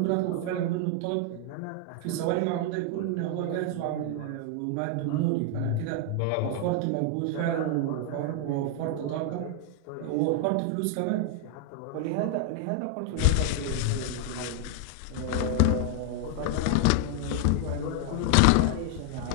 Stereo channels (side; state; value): both; different; correlation 0.00